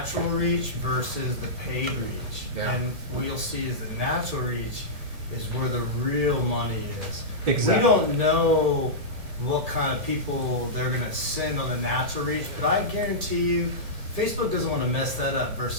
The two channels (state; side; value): late; left; 1.9 ms